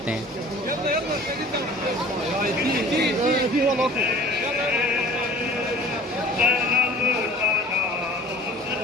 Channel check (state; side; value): normal; both; correlation 0.46